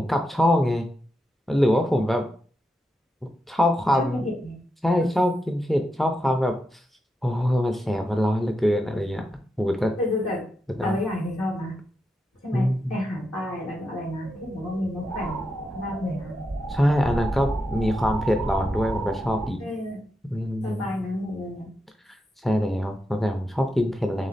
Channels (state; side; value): normal; both; correlation 0.86